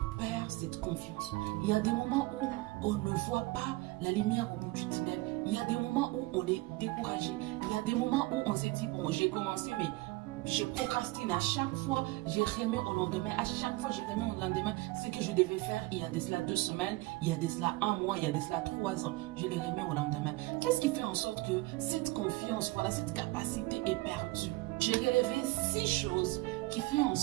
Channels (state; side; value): quieter; left; 20.8 dB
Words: perd cette confiance. Il y a des moments où on ne voit pas la lumière au bout du tunnel. Il y a des moments où on est découragé. Il y a des moments où on s'est dit, bon, j'ai commencé, mais je procrastine à chaque fois, j'ai remis au lendemain, à chaque fois j'ai remis au lendemain ce que je devais faire il y a de cela 2 semaines, il y a de cela 1 mois, il y a de cela 3 ans, je les remets au lendemain. Qu'est-ce qui fait en sorte que cette confiance, voilà, cette capacité est perdue? J'ai relevé 6 choses qui font en